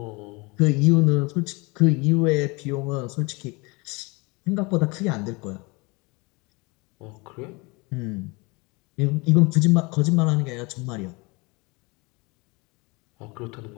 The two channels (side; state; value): right; quieter; 27.0 dB